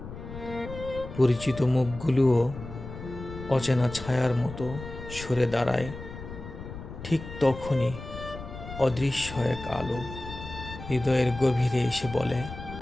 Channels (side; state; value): left; noise; rumble, 12 dB below the sound